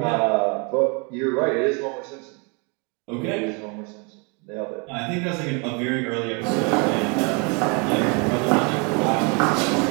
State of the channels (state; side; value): quieter; left; 33.0 dB